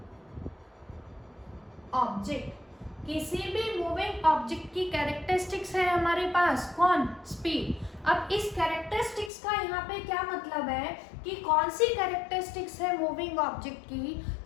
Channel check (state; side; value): drops out; right; at 9.3 s